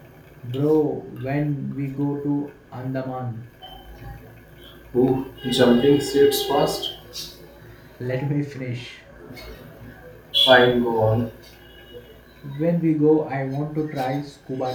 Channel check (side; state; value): both; identical; correlation 1.00